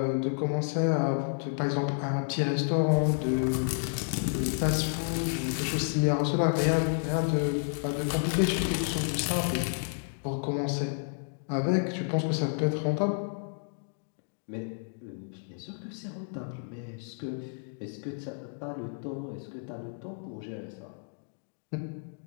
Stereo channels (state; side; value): silent; right; digital silence